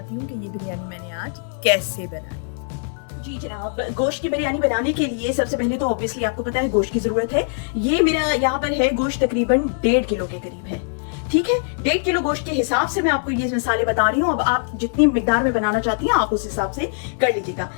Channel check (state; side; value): silent; right; digital silence